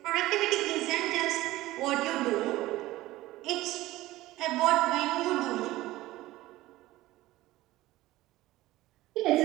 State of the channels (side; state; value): left; quieter; 17.2 dB